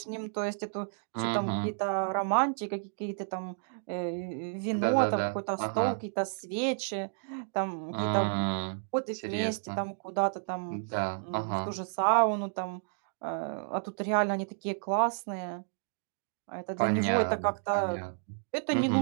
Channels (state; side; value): silent; left; digital silence